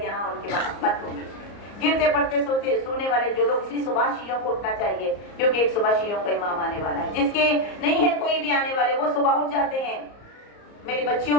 یہاں ان کی محبت ہوگی. گرتے پڑتے سونے والے جو لوگ, اس لیے صبح شیعوں کو اٹھنا چاہیے کیونکہ ایک صبح شیعوں کا امام آنے والا ہے. جس کے نہیں ہے کوئی بھی آنے والے وہ صبح اٹھ جاتے ہیں. میری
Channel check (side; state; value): right; late; 34 ms